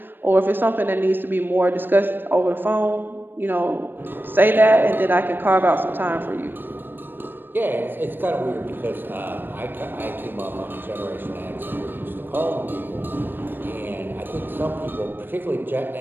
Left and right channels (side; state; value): left; late; 0.095 ms